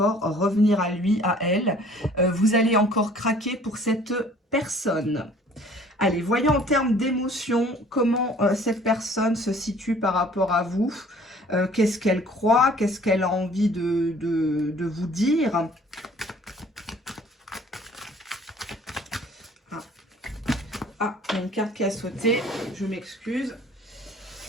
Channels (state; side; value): normal; both; correlation 0.53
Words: revenir à lui, à elle. Vous allez encore craquer pour cette personne. Allez, voyons en termes d'émotion comment cette personne se situe par rapport à vous. Qu'est-ce qu'elle croit? Qu'est-ce qu'elle a envie de vous dire? Il y a une carte qui a sauté. Je m'excuse.